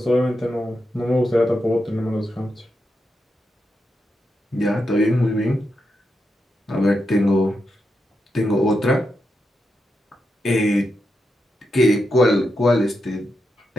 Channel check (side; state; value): both; normal; correlation 0.86